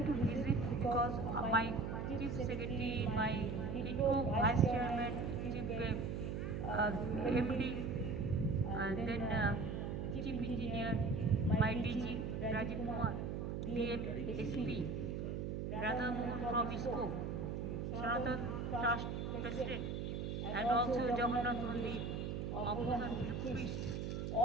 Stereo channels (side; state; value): right; noise; hum, 3 dB below the sound